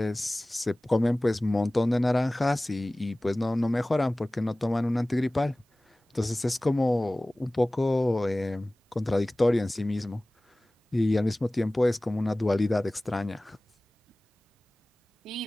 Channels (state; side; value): normal; both; correlation 0.98